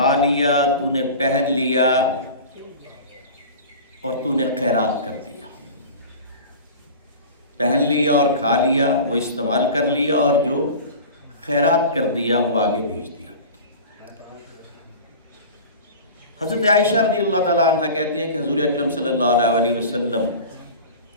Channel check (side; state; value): both; inverted; correlation -0.36